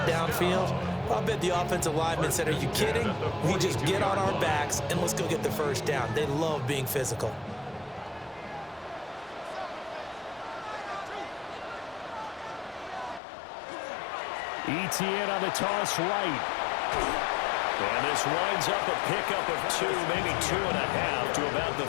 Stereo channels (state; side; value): drops out; right; at 13.2 s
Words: downfield. I bet the offensive lineman said, are you kidding? We just get on our backs and let's go get the first down. They love being physical. ETN on the toss right. And this winds up a pickup of 2, maybe 2.5 to about the